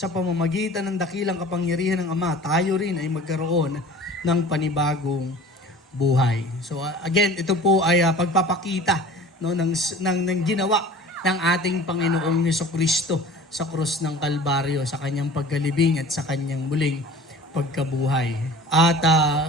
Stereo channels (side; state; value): both; normal; correlation 0.43